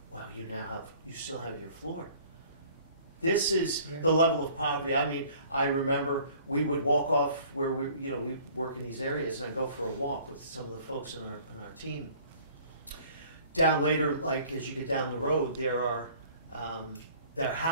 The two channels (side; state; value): both; inverted; correlation -0.53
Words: well, you still have your floor. This is the level of poverty. I mean, I remember we would walk off where we work in these areas, and I go for a walk with some of the folks on our team down later, like as you get down the road, there are their